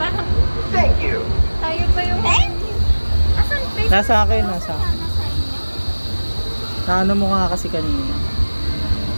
Thank you. tayo pa yung... Thank you! Asan face mask? Nasa akin, nasa. Nasa inyo. Naano mo nga kasi kanina.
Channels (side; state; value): both; inverted; correlation -1.00